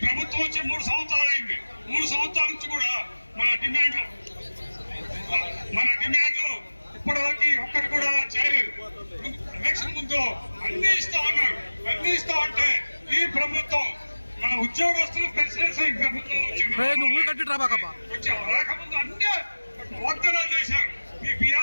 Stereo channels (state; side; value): inverted; both; correlation -1.00